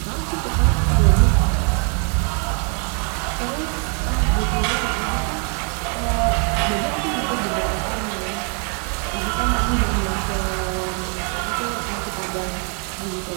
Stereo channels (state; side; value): quieter; left; 38.9 dB